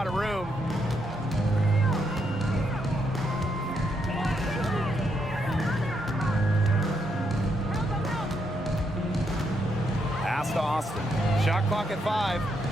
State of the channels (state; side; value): normal; both; correlation 0.78